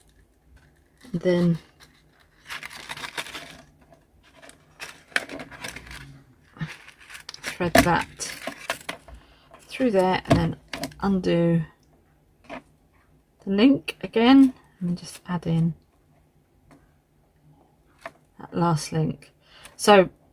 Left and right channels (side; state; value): both; identical; correlation 1.00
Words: and then thread that through there, and then undo the link again, and then just add in that last link. So